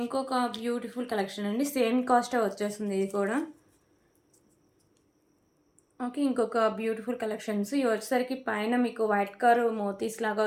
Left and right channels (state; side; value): identical; both; correlation 1.00